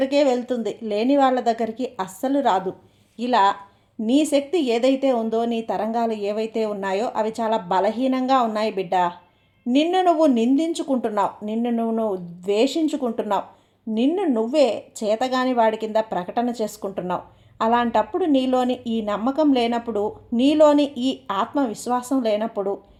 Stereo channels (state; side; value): identical; both; correlation 1.00